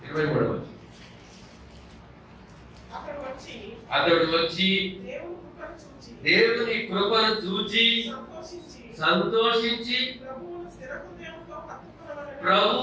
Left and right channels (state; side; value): identical; both; correlation 1.00